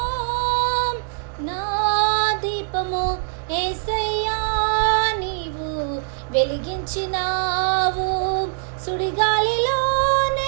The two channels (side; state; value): left; silent; digital silence